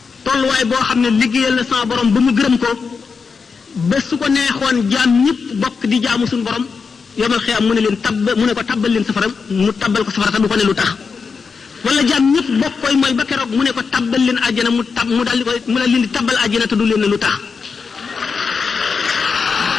tolluwaay boo xam ne liggéeyal na sama borom ba mu gërëm ko ba su ko neexoon jaam ñëpp bokk di jaamu suñu borom yomal xiyaam mu ne leen mu ne ko tabbal leen safara mu tabbal ko safara te du ko ne lu tax. wala jaam ñëpp bokk koy mooy ba keroog mu ne ko tabbal leen àjjana mu daal di koy mu daal leen di tabbal àjjana te du leen ne lu tax.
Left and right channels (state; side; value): quieter; right; 5.3 dB